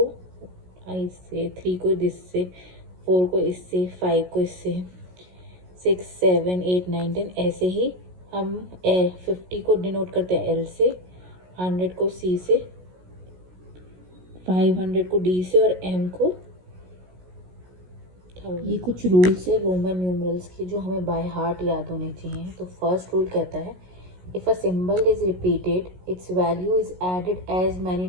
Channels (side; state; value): left; late; 16 ms